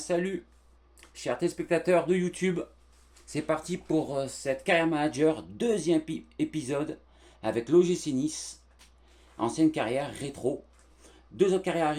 chers téléspectateurs de YouTube. C'est parti pour cette Carrière Manager, deuxième épisode avec l'OGC Nice, ancienne carrière rétro. Deux autres carrières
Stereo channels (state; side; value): identical; both; correlation 1.00